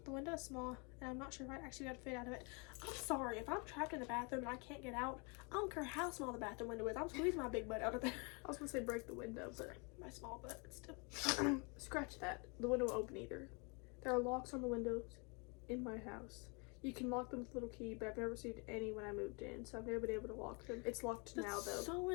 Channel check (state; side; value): quieter; right; 32.7 dB